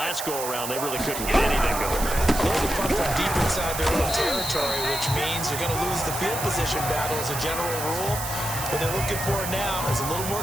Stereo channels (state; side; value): noise; right; hiss, 6 dB below the sound